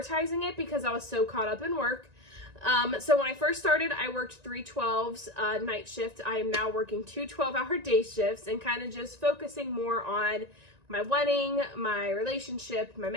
it because I was so caught up in work. So when I first started, I worked 3 12s night shift. I am now working 2 12-hour day shifts and kind of just focusing more on my wedding, my relationship, my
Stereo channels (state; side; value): late; left; 1.9 ms